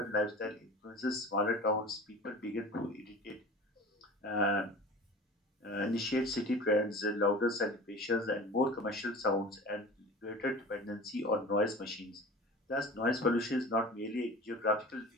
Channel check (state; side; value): normal; both; correlation 0.38